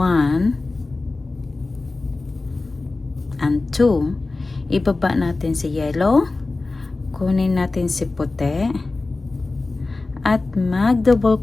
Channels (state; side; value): quieter; right; 3.4 dB